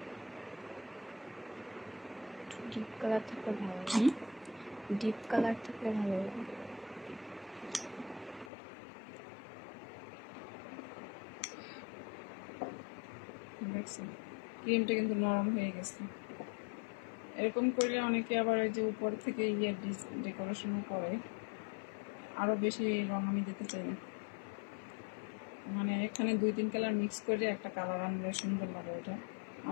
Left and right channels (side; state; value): right; drops out; at 8.5 s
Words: ডিপ কালার থাকলে ভালো লাগে, ডিপ কালার থাকলে ভালো লাগে। দেখছেন ক্রিমটা কিন্তু নরম হয়ে গেছে। এরকম করলে অনেকে আবার এই যে উপর থেকে ডেকোরেশনও করে, আরো বেশি রং আমি দিতে চাই না। মানে এখানে 2-3 কালার মিক্স করে একটা কালার আনলে সুন্দর লাগে এটা।